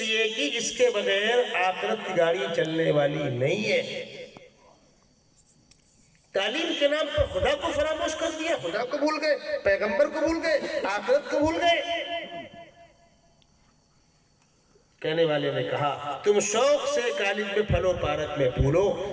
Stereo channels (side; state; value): both; identical; correlation 1.00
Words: کہ اس کے بغیر آخرت کی گاڑی چلنے والی نہیں ہے۔ تعلیم کے نام پر خدا کو فراموش کر دیا، خدا کو بھول گئے، پیغمبر کو بھول گئے، آخرت کو بھول گئے۔ کہنے والے نے کہا تم شوق سے کالج میں پھلو پارک میں پھولو،